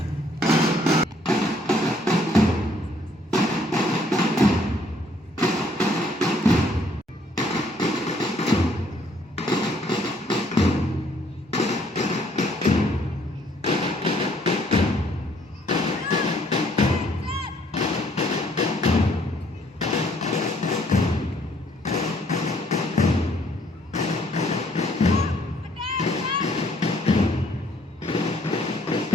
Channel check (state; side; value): normal; both; correlation 0.64